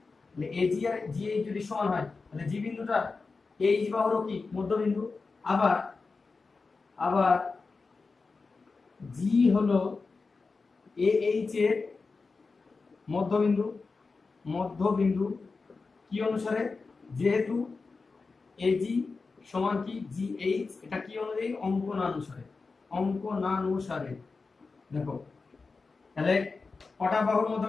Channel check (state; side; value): quieter; right; 4.2 dB